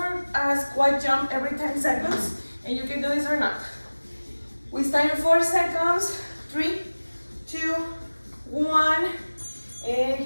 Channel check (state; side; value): inverted; both; correlation -1.00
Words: a squat jump every 10 seconds, and you can do this or not. We start in 4 seconds. 3, 2, 1, and